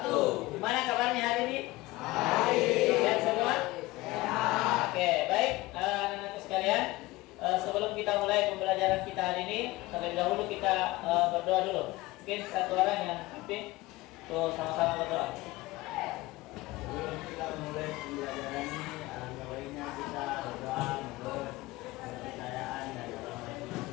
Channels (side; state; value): right; quieter; 19.8 dB